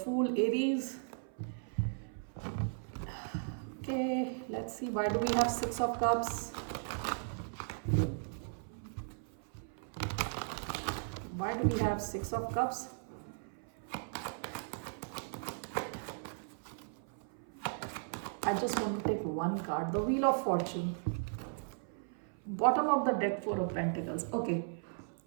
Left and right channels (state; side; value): silent; left; 53 dB below the other